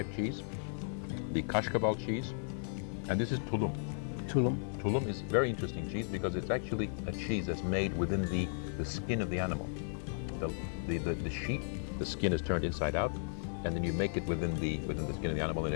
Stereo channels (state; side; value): silent; right; digital silence